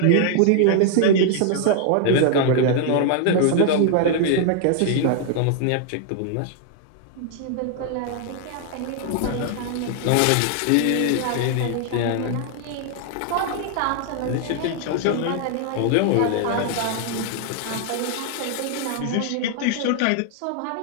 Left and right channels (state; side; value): different; both; correlation 0.00